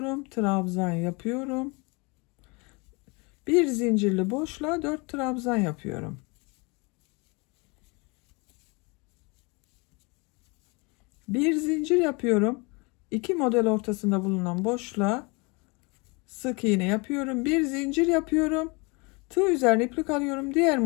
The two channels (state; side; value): quieter; right; 29.0 dB